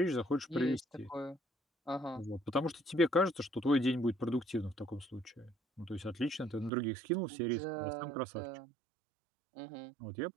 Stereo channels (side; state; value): left; drops out; at 6.7 s